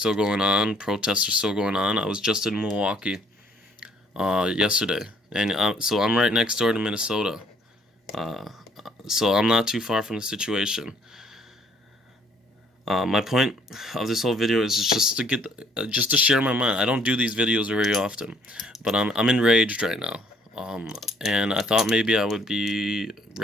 going on. Protests are still going on. I was just in Milwaukee yesterday, and so I'm right next door to Minnesota. So I'm not too far from the situation. My point of this whole video is just to share my mind. I don't do these videos very often, but I'm enraged right now. And I thought maybe I would be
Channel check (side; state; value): both; normal; correlation 0.63